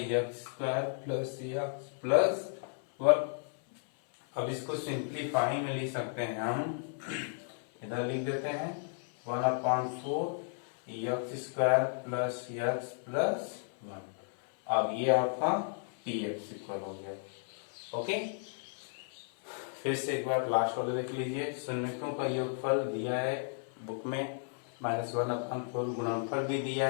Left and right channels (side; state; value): right; silent; 55 dB below the other